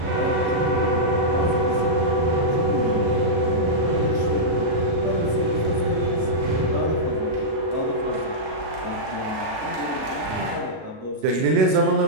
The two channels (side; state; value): left; late; 37 ms